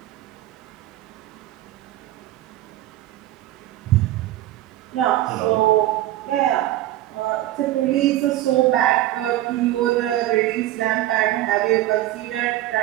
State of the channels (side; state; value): left; quieter; 14.6 dB